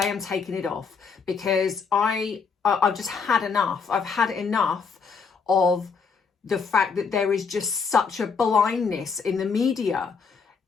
I'm taking it off because I've just had enough. I've had enough of the fact that there is just such a blindness in the media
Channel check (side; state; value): right; quieter; 5.5 dB